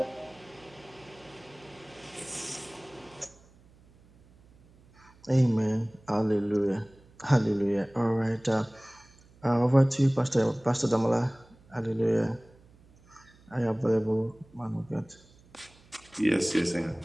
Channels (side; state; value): right; noise; hum, 27 dB below the sound